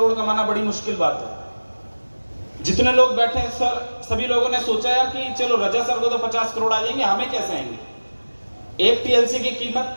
कमाना बड़ी मुश्किल बात है। जितने लोग बैठे हैं सर, सभी लोगों ने सोचा यार कि चलो रजा सर को तो 50 करोड़ आ जाएंगे, हमें कैसे आएंगे। एक TLC की कीमत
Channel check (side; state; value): both; inverted; correlation -1.00